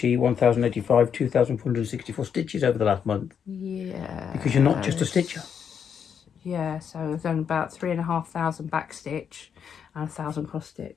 1,085, 2,464 stitches over the last month. Yeah. Because you're not just a stitcher. Yeah, so I've done about 3,500 back stitch and 1,000 cross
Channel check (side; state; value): right; quieter; 7.6 dB